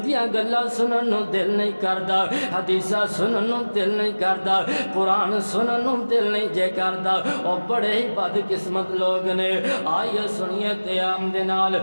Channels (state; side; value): inverted; both; correlation -1.00